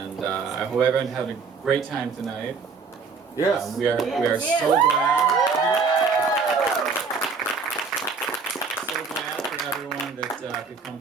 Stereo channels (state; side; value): quieter; left; 5.0 dB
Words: I hope everyone had a great time tonight. Yes. We are so glad. So glad for everyone that could come